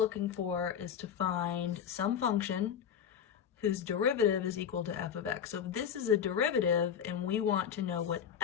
for is to find some function whose derivative is equal to f of x. So if this is a derivative and we want to know what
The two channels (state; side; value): quieter; right; 8.3 dB